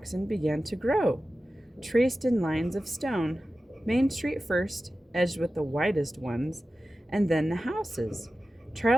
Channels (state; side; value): normal; both; correlation 0.94